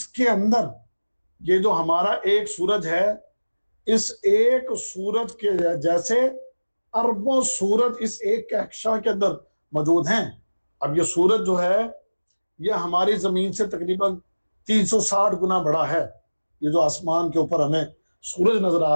کے اندر یہ جو ہمارا ایک سورج ہے، اس ایک سورج کے جیسے اربوں سورج اس ایک کہکشاں کے اندر موجود ہیں۔ اب یہ سورج جو ہے یہ ہماری زمین سے تقریباً 360 گنا بڑا ہے، یہ جو آسمان کے اوپر ہمیں سورج نظر آ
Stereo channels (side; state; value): both; inverted; correlation -1.00